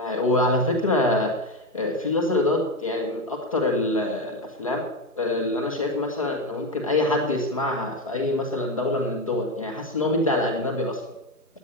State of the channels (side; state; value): both; normal; correlation 0.15